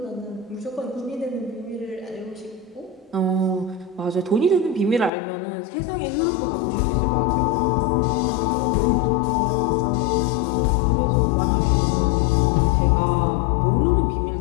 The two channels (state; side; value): drops out; right; at 5.1 s